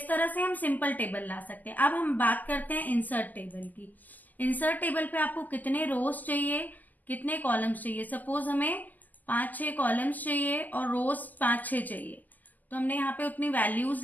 तरह से हम सिंपल टेबल ला सकते हैं। अब हम बात करते हैं इंसर्ट टेबल की। इंसर्ट टेबल पे आपको कितने रोज चाहिए, कितने कॉलम्स चाहिए। सपोज हमें 5-6 कॉलम्स चाहिए और रोज 5-6 चाहिए, तो हमने यहाँ पे उतनी वैल्यूज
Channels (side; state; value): right; late; 0.083 ms